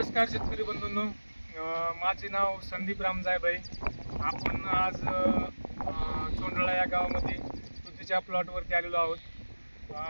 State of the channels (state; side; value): inverted; both; correlation -1.00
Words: शेतकरी बंधूंनो, माझे नाव संदीप रामजायभाई. आपण आज चोंडळा या गावामध्ये तुतीच्या प्लॉटवरती आलेलो आहोत.